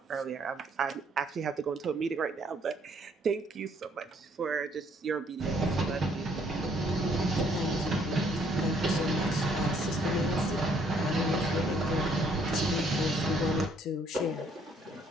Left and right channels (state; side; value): normal; both; correlation 0.65